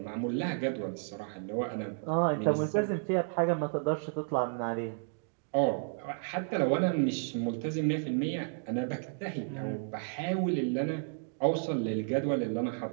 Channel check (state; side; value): silent; left; digital silence